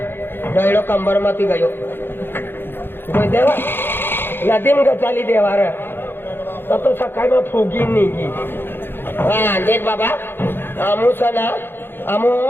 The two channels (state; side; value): late; right; 0.10 ms